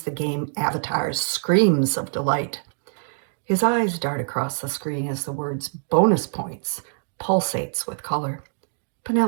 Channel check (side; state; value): left; silent; digital silence